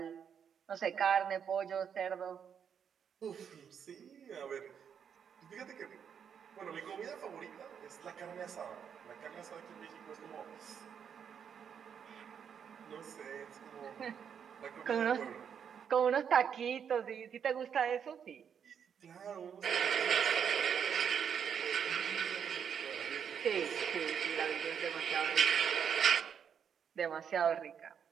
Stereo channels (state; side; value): quieter; left; 7.7 dB